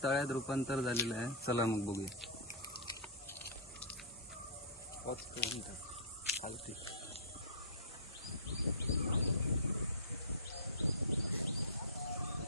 तळ्यात रूपांतर झालेलं आहे. चला मग बघूया.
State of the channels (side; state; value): both; normal; correlation -0.19